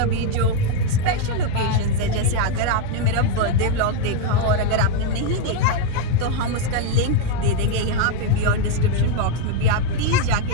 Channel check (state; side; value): different; both; correlation 0.01